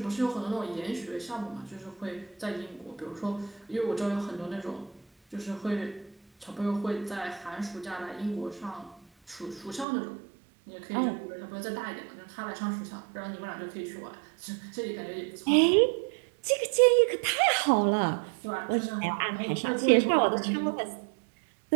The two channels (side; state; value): left; drops out; at 9.9 s